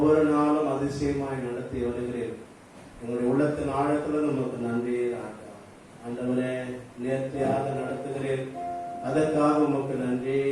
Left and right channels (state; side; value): identical; both; correlation 1.00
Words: நாளும் அதிசயமாய் நடத்தி வருகிறேன். எங்களுடைய உள்ளத்தின் ஆழத்தில் நமக்கு நன்றி ராஜா. ஆண்டவரே நேர்த்தியாக நடத்துகிறேன், அதற்காக உமக்கு நன்றி